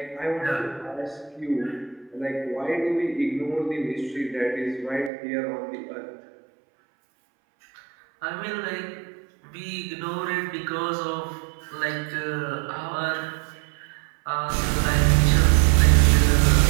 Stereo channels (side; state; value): left; drops out; at 5.1 s